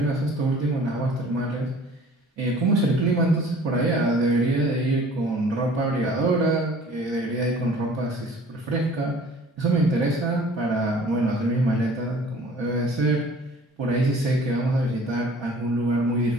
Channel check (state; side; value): normal; both; correlation 0.50